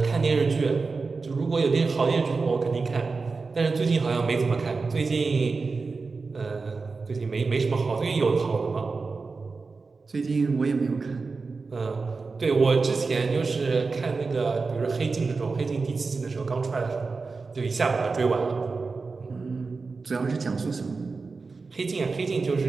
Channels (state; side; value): quieter; left; 4.3 dB